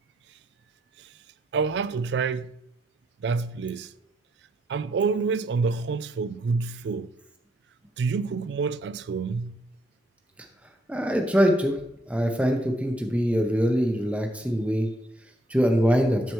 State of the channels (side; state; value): both; normal; correlation 0.73